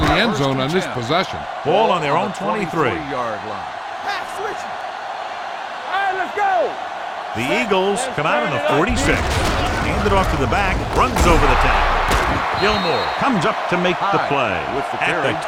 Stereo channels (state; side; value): identical; both; correlation 1.00